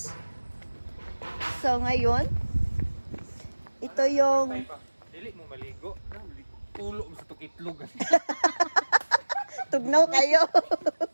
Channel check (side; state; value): both; inverted; correlation -1.00